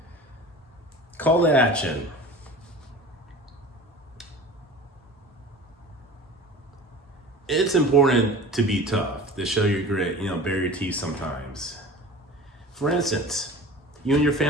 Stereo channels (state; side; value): normal; both; correlation 0.38